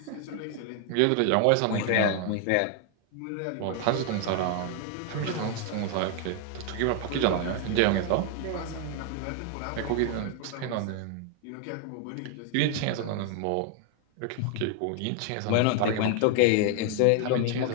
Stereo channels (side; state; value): both; different; correlation 0.00